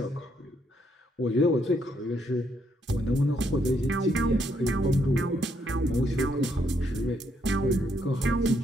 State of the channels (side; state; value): both; normal; correlation 0.74